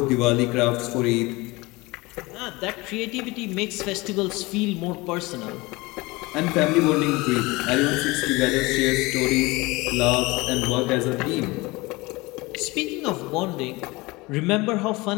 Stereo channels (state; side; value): quieter; right; 22.8 dB